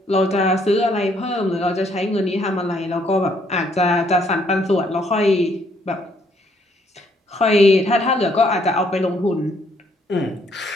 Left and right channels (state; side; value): normal; both; correlation 0.68